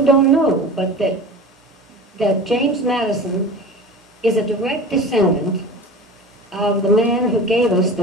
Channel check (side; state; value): both; normal; correlation 0.35